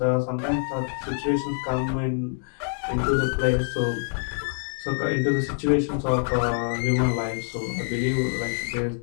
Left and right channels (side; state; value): right; silent; digital silence